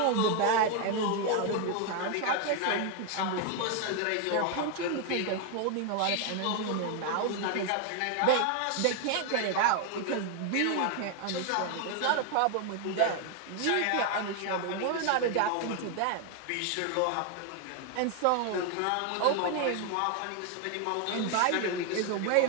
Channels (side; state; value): both; different; correlation 0.01